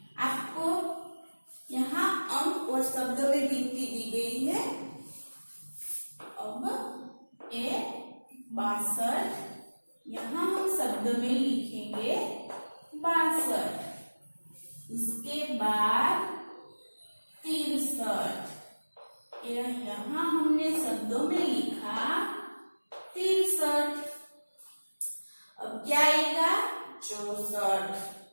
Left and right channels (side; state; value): both; inverted; correlation -1.00